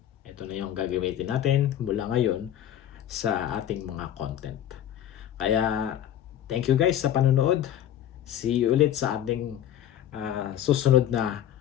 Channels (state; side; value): quieter; right; 10.9 dB